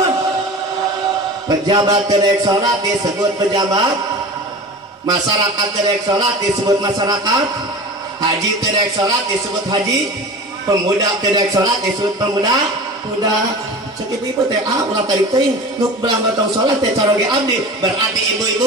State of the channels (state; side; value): normal; both; correlation 0.35